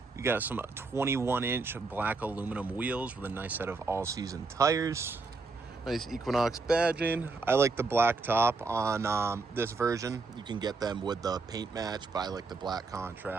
you got some 21-inch black aluminum wheels with a nice set of all-season tires. Nice Equinox badging. I like the black top on this version. You can get them with the paint match, but I like the black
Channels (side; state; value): left; quieter; 3.9 dB